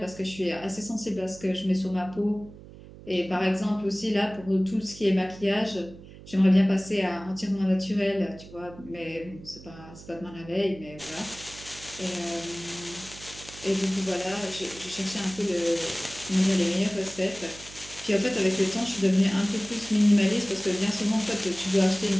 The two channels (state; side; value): noise; right; hum, 18 dB below the sound